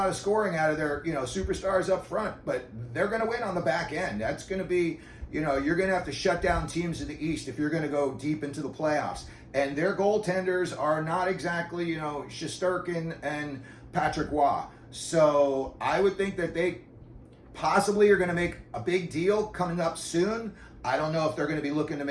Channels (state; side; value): identical; both; correlation 1.00